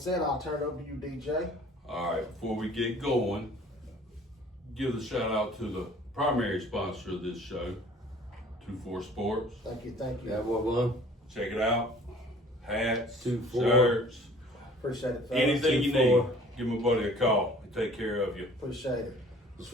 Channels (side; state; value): both; normal; correlation 0.51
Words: I'll turn it over to you, DJ. All right, before we get going, give a shout out to the primary sponsor of this show, 2-4 Sports. Thank you, thank you. Yeah, what one? Check it out. Hats, 2-4. shirts, Appreciate it, fellas. anything you 2-4. need. Give my buddy a call. He'll take care of you. Appreciate it. It's